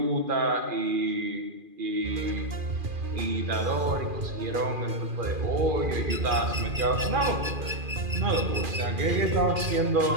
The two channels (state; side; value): late; left; 2.4 ms